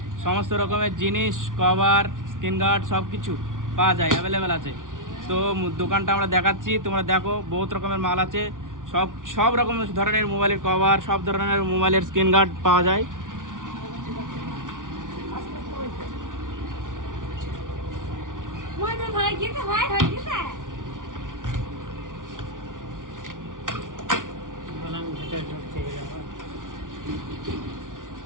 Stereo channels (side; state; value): left; late; 0.88 ms